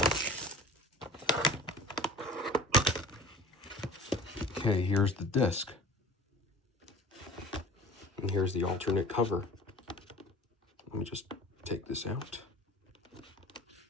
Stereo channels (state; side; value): normal; both; correlation 0.41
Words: Okay, here's the disc. And here's the alternate cover. Let me just take this out.